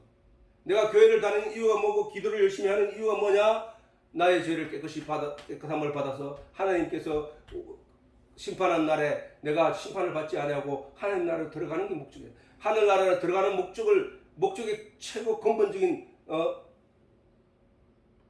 내가 교회를 다니는 이유가 뭐고 기도를 열심히 하는 이유가 뭐냐? 나의 죄를 깨끗함을 받아서 하나님께서 심판한 날에 내가 심판을 받지 아니하고 하나님 나라로 들어가는 게 목적이에요. 하늘 나라로 들어가는 목적의 최고 근본적인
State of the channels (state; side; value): identical; both; correlation 1.00